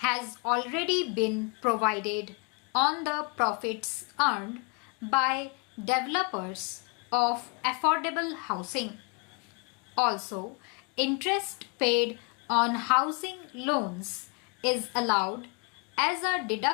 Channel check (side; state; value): right; quieter; 33.5 dB